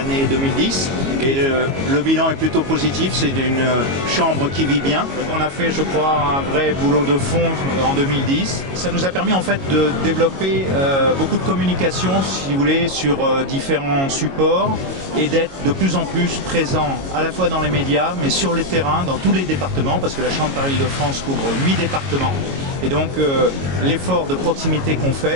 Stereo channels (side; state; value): left; late; 22 ms